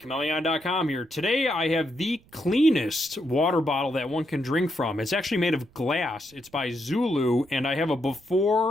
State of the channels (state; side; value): noise; right; rumble, 28 dB below the sound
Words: here. Today I have the cleanest water bottle that one can drink from. It's actually made of glass. It's by Zulu, and I have a